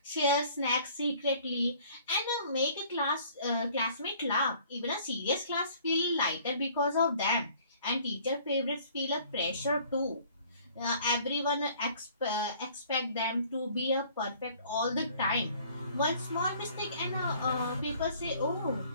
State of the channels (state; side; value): inverted; both; correlation -0.54